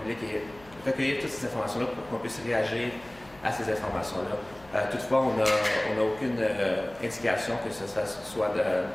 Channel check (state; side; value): noise; left; hum, 24 dB below the sound